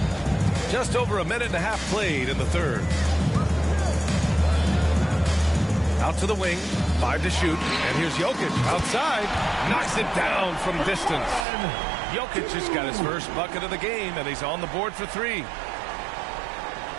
Just over a minute and a half played in the third. Out to the wing, 5 to shoot, and here's Jokic outside, knocks it down from distance. Jokic just got his first bucket of the game, and he's on the board for 3.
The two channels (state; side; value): drops out; left; at 11.5 s